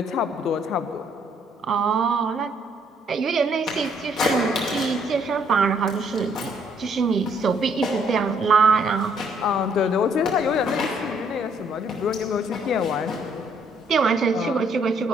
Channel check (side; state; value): both; normal; correlation 0.67